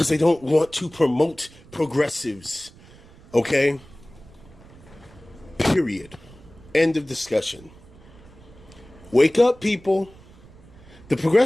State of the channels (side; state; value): right; noise; rumble, 23 dB below the sound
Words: they don't want to promote progressives. Okay? Period. End of discussion. Wake up, people. The